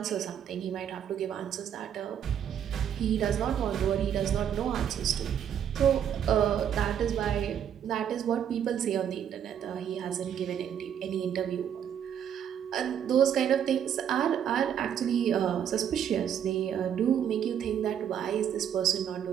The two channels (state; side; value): quieter; left; 9.0 dB